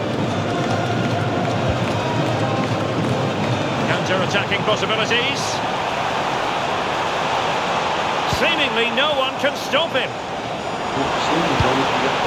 Counter-attacking possibilities. Seemingly no one can stop him.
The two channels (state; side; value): identical; both; correlation 1.00